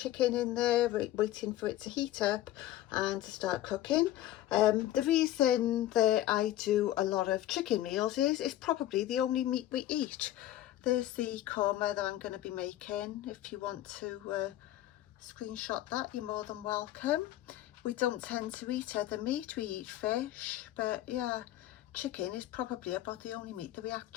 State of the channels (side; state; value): right; quieter; 13.9 dB